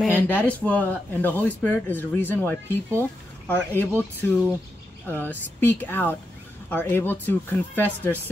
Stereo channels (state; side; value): normal; both; correlation 0.86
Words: that is what, and the Holy Spirit is the reason why people are able to speak out, are able to confess their